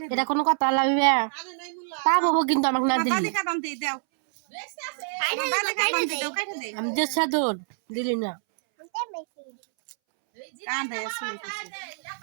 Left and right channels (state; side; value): silent; left; 61 dB below the other